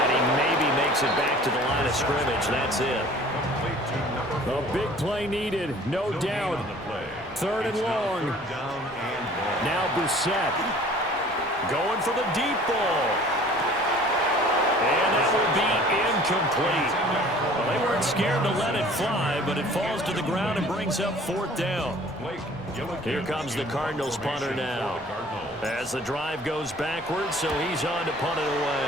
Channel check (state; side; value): noise; left; rumble, 22 dB below the sound